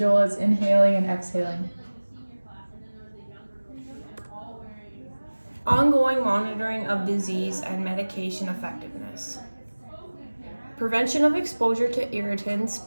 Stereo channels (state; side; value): inverted; both; correlation -1.00